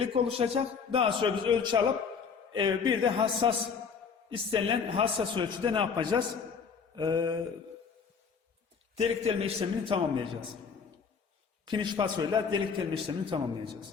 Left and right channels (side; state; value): right; quieter; 5.9 dB